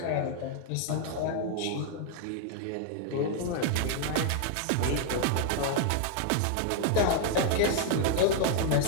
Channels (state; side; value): different; both; correlation 0.00